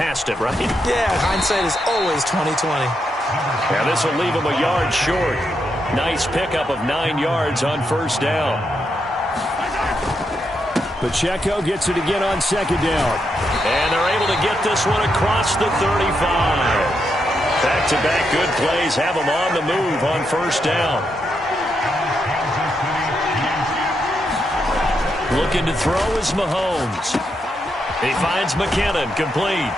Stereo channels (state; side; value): normal; both; correlation 0.82